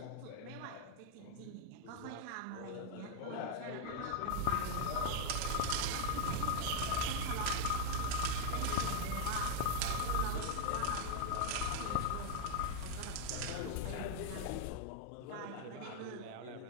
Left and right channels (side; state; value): both; different; correlation 0.00